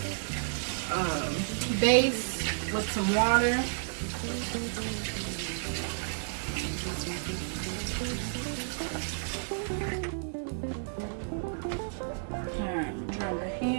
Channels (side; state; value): left; silent; digital silence